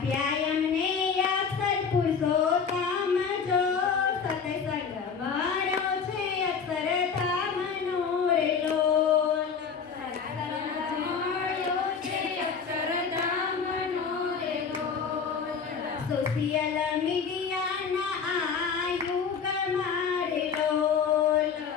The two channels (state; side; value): quieter; right; 6.1 dB